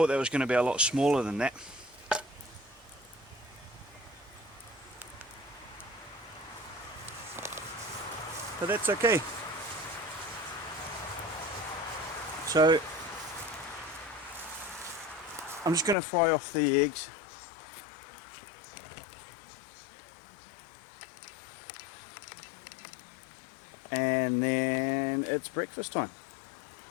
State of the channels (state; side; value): drops out; right; at 16.0 s